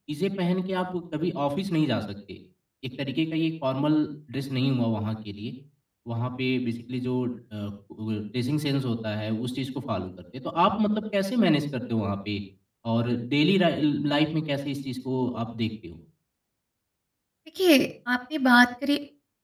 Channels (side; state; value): both; identical; correlation 1.00